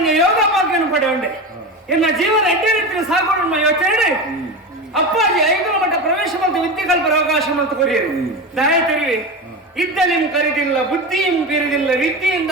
ಯೋಗ ಭಾಗ್ಯನು ಪಡೆ ಉಂಡೆ ಎನ್ನ ಜೀವನ ಎಡ್ಡೆ ರೀತಿಯ ಸಾಗೋಣ ಯೋಚನೆ ಅಪ್ಪಾಜಿ 5 ಮಟ್ಟ ಪ್ರವೇಶ ಮತ್ತು ವಿದ್ಯೆ ಕಲ್ಪರ ಅವಕಾಶ ಮತ್ತು ಕೊರಿಯರು ದಯ ತೆರಿವೆ ಇದ್ದಲಿಂ ಕರಿದಿಲ್ಲ ಬುದ್ಧಿಯಂ ಬೀರಿದಿಲ್ಲ ವಿದ್ಯೆಯಿಂದ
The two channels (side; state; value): both; normal; correlation 0.23